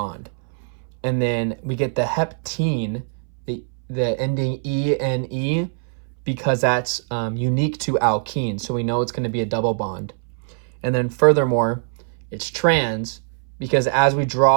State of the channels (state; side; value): silent; left; 61 dB below the other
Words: And then we get the heptene, the ending E-N-E, because that's unique to alkene. So we know it's going to be a double bond. And then furthermore, it's trans, because as we